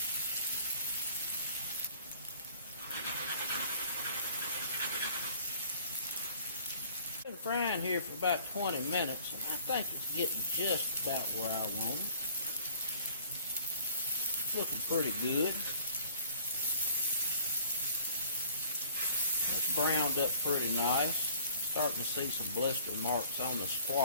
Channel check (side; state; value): both; inverted; correlation -0.53